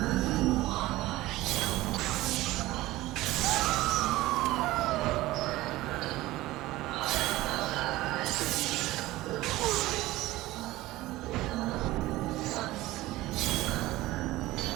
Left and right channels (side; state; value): left; quieter; 17.7 dB